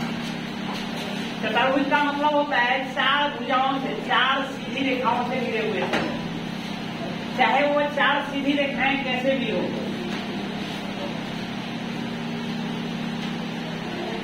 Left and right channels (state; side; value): identical; both; correlation 1.00